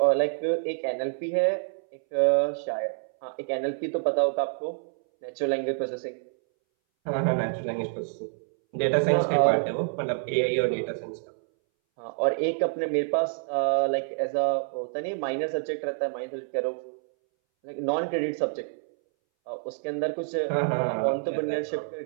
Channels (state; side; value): silent; left; 60 dB below the other